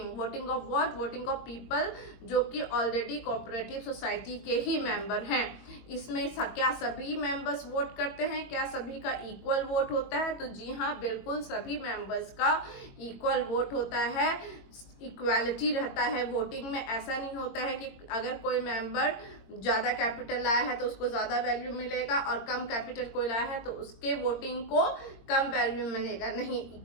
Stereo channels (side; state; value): right; late; 22 ms